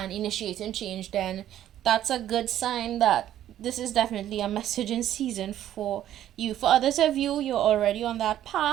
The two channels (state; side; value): quieter; left; 11.9 dB